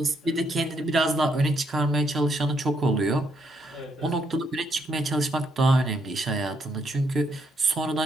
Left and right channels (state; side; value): normal; both; correlation 0.75